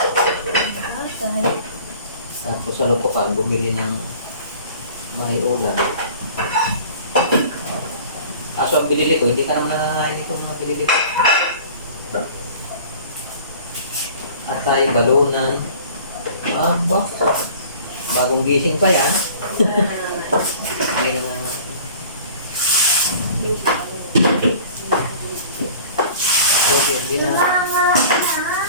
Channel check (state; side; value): inverted; both; correlation -0.46